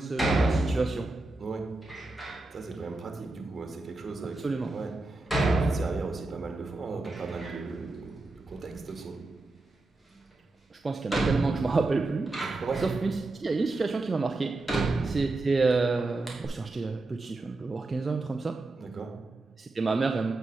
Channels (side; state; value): left; quieter; 3.1 dB